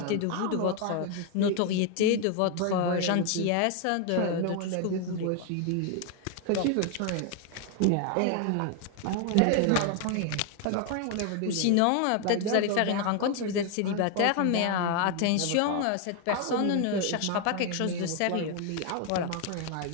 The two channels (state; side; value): different; both; correlation 0.01